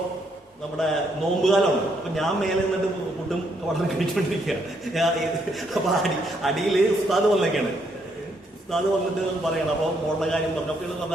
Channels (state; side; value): normal; both; correlation 0.73